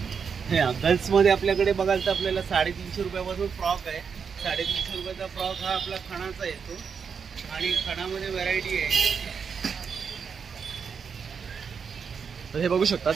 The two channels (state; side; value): quieter; left; 6.3 dB